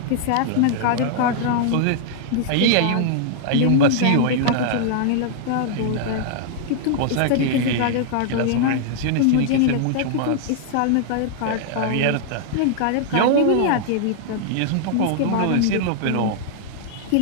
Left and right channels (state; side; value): different; both; correlation -0.01